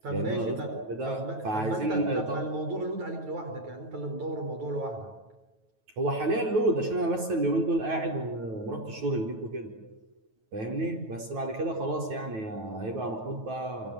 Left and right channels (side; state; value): left; late; 9.2 ms